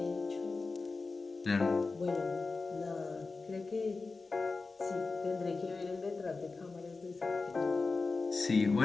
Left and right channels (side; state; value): right; quieter; 4.0 dB